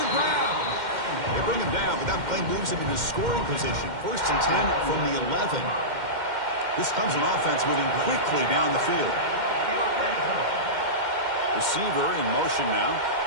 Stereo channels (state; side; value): late; left; 2.1 ms